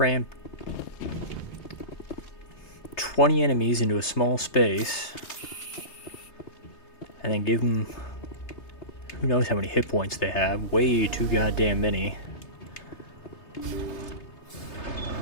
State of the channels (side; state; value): right; late; 3.3 ms